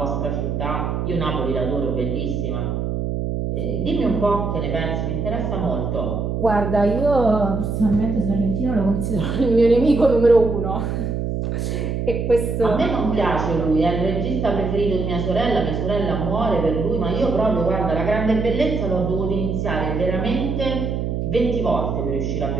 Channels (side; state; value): right; noise; hum, 2 dB below the sound